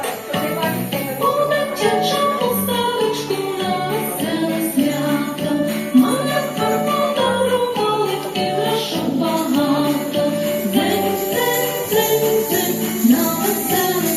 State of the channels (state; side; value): identical; both; correlation 1.00